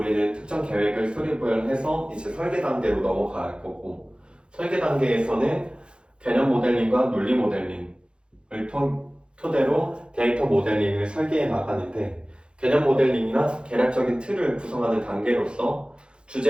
특정 계획을 수립을 해서 이제 설계 단계로 넘어갈 거고 설계 단계에서는 개념 모델링과 논리 모델링을 토대로 데이터 모델링을 설계해 나가는데 개념 모델링이나 계략적인 틀을 구성하는 단계로서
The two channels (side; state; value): left; late; 0.054 ms